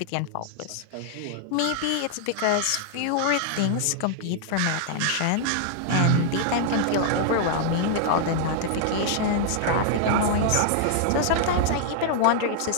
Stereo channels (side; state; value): both; different; correlation -0.01